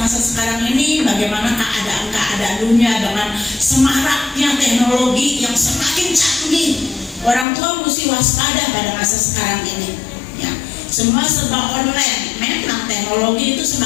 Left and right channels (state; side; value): drops out; right; at 7.5 s